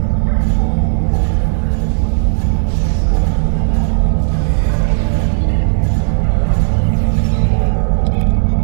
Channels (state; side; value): silent; left; digital silence